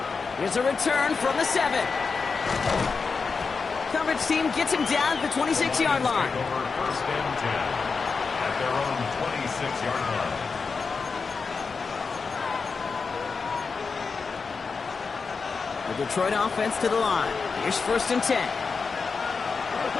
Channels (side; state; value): right; quieter; 4.9 dB